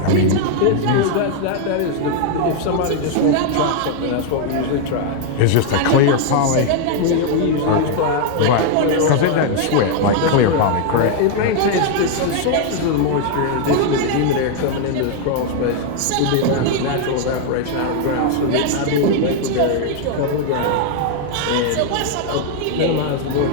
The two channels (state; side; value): different; both; correlation 0.00